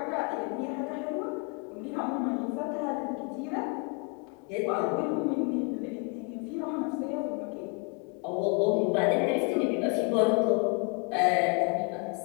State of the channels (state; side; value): quieter; right; 32.7 dB